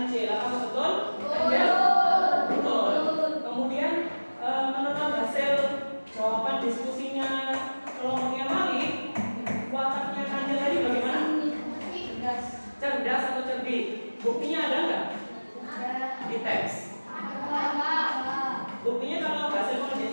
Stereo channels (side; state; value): both; inverted; correlation -1.00